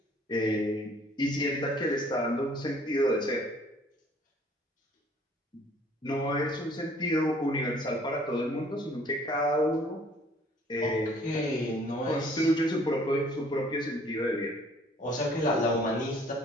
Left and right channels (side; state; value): both; normal; correlation 0.57